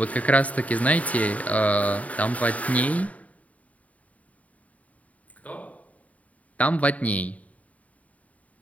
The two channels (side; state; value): right; late; 0.070 ms